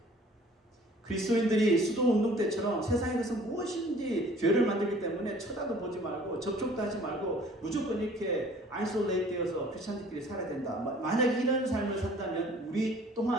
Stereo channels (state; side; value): normal; both; correlation 0.52